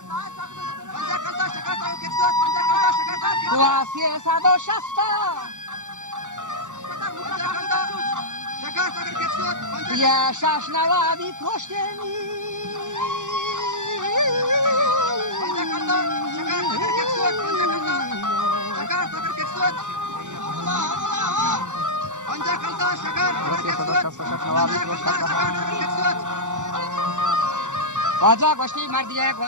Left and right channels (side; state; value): left; late; 0.85 ms